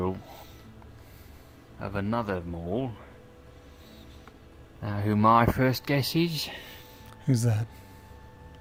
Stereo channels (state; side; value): identical; both; correlation 1.00